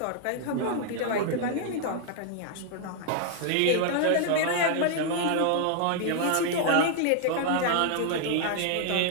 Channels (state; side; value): different; both; correlation 0.00